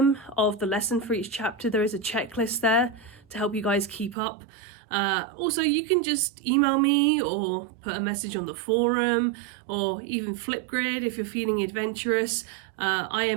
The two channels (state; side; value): drops out; left; at 4.2 s